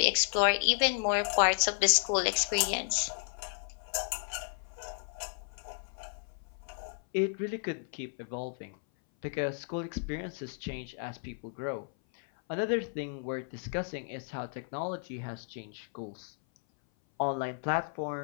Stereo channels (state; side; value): silent; right; 56 dB below the other